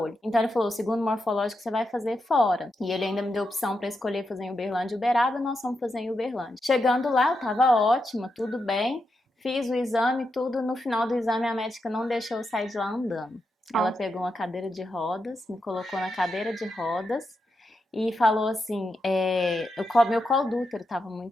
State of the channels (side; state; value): both; normal; correlation 0.86